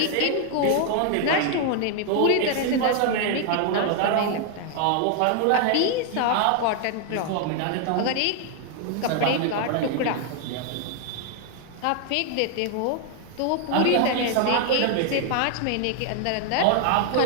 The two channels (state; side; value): different; both; correlation 0.00